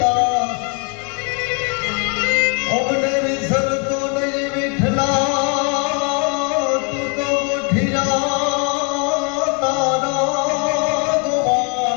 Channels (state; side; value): quieter; right; 35.6 dB